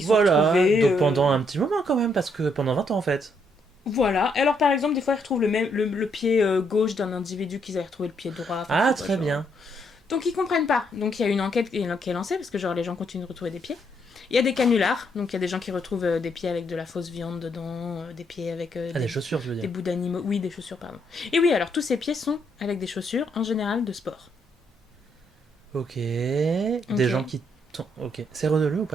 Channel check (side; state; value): both; normal; correlation 0.74